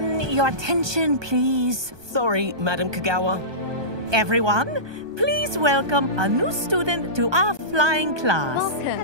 your attention, please. Sorry, Madam Kagawa. Everyone, please welcome a new student to our flying class.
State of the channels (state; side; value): late; left; 1.2 ms